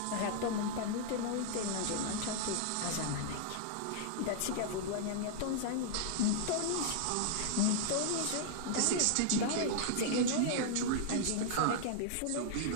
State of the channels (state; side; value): different; both; correlation -0.01